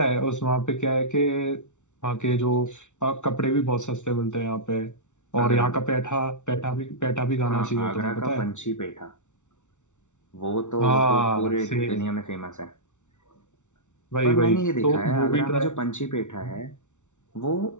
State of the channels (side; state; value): right; late; 0.84 ms